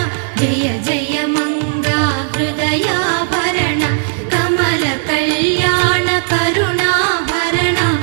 జయ జయ మంగ హృదయాభరణ కమల కళ్యాణ కరుణాభరణ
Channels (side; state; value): left; silent; digital silence